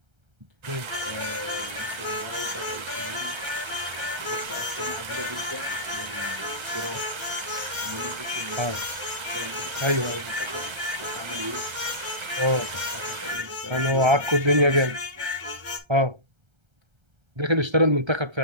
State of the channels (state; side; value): late; left; 1.3 ms